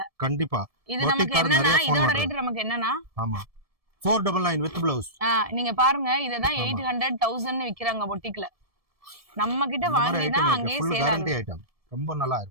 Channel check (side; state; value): left; late; 1.7 ms